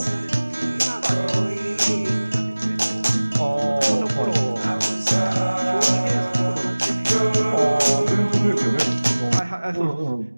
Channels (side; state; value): both; inverted; correlation -1.00